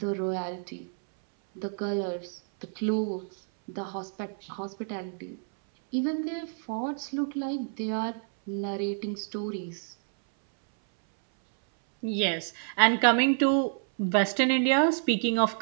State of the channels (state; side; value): silent; left; 59 dB below the other